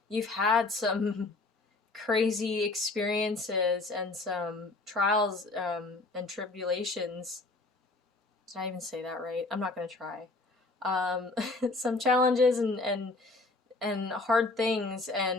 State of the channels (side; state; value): right; quieter; 3.3 dB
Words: you've had some crazy experiences and some trials and tribulations, did I even say that right? I'm not going to try. Some challenges and hard things